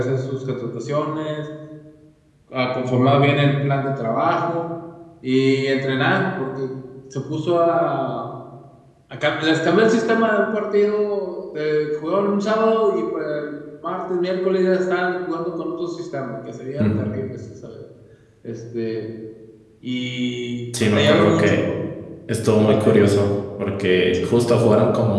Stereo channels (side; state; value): both; identical; correlation 1.00